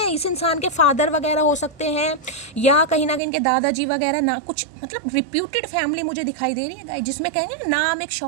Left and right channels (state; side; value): drops out; left; at 3.2 s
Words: इस इंसान के फादर वगैरह हो सकते हैं या कहीं ना कहीं इनके दादाजी वगैरह, ना कुछ मतलब रिप्यूटेड फैमिली मुझे दिखाई दे रही है, जिसमें कहेंगे ना नाम एक